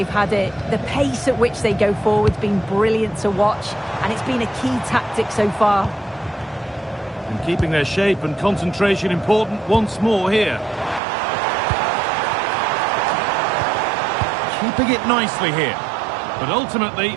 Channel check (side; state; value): left; drops out; at 11.0 s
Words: had it. The pace at which they go forward's been brilliant to watch, and it's been a key tactic so far. And keeping their shape and concentration important once more here. Keeping it nicely here, but ultimately